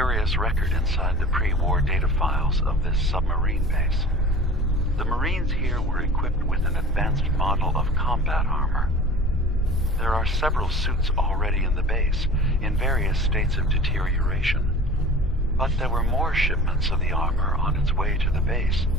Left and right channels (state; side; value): normal; both; correlation 0.41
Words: record inside the pre-war data files of this submarine base. The Marines here were equipped with an advanced model of combat armor. There are several suits already in the base, in various states of deterioration. But there were more shipments of the armor on its way to the base